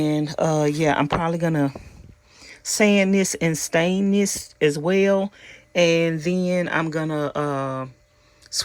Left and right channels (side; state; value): both; identical; correlation 1.00